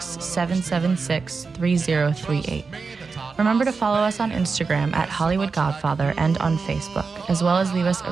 Remember to follow us on Instagram at Hollywood Godfather and on Facebook, as well as leave us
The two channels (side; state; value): left; quieter; 4.7 dB